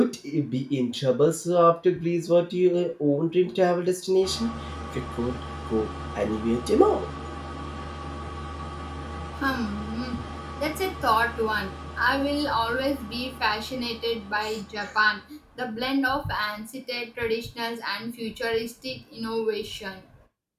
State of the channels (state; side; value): identical; both; correlation 1.00